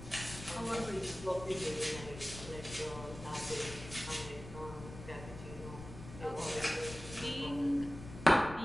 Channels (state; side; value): noise; left; rumble, 12 dB below the sound